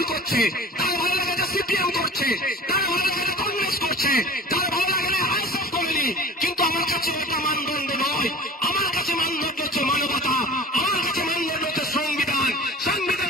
করছে, তার ভালো লেগেছে সিপিএম করছে, তার ভালো লেগেছে কংগ্রেস করছে, তার ভালো লাগলে আইএসএফ করেনি। কিন্তু আমার কাছে এটা মানদণ্ড নয়, আমার কাছে মানদণ্ড হচ্ছে মানবতা, আমার কাছে মানদণ্ড হচ্ছে সংবিধান। সংবিধান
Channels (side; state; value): both; normal; correlation 0.40